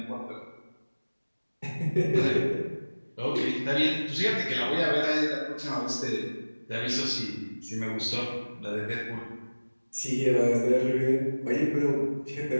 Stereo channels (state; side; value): inverted; both; correlation -1.00